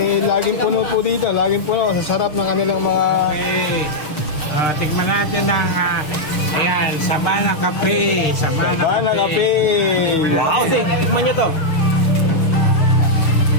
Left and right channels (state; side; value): late; right; 6.6 ms